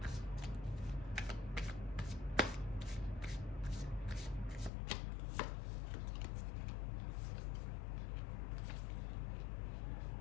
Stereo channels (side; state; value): right; drops out; at 4.7 s